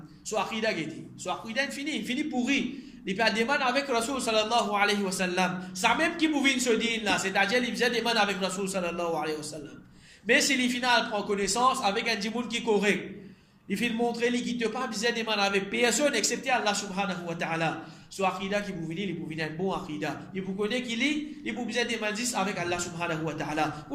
Soit akida gedi, soit akida fini pourri. Il peut des man avec Rasul sallallahu alayhi wa sallam. Ça même qui pouvait ce din là, c'est-à-dire il faisait des man avec Rasul sallallahu alayhi wa sallam. Mais si les final prend connaissance avec un djimoun qui est correct. Il faut montrer qu'il ne peut pas besoin de demander avec personne excepté Allah subhanahu wa ta'ala. Soit akida qui vous venir, il vous venir un bon akida. Il vous connaît qu'il est, il vous besoin de demander avec Allah subhanahu wa ta'ala.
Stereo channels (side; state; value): both; identical; correlation 1.00